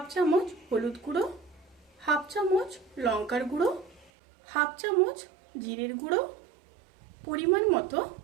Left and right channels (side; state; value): left; drops out; at 4.1 s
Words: চামচ হলুদ গুঁড়ো, হাফ চামচ লঙ্কার গুঁড়ো, হাফ চামচ জিরের গুঁড়ো, পরিমাণ মতো